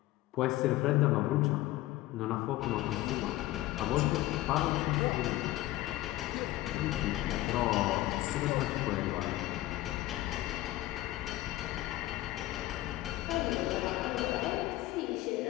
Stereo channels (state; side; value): quieter; right; 16.7 dB